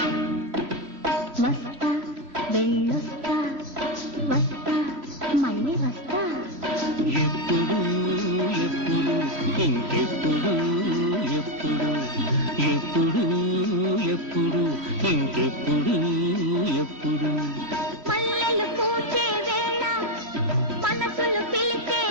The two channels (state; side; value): late; left; 3.0 ms